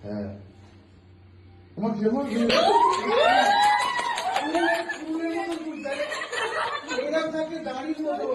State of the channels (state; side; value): identical; both; correlation 1.00